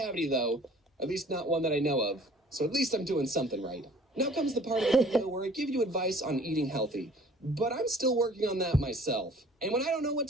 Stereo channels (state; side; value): normal; both; correlation 0.51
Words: though, at least not one that I know of. So at least I'm doing something right. Now comes the part of the video where I give you advice on eating healthy. But I'm still working on that myself. And when I don't know what